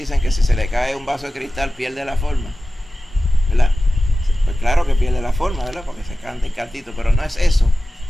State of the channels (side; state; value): both; normal; correlation 0.95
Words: que si se le cae un vaso de cristal pierde la forma, ¿verdad? Pues claro que pierde la forma, ¿verdad? Porque se canta el cantito, pero no es eso.